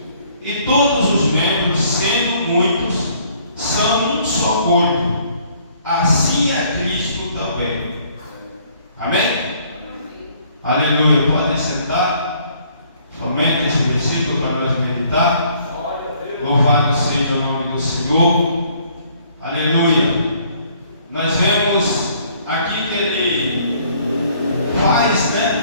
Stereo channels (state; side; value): inverted; both; correlation -0.61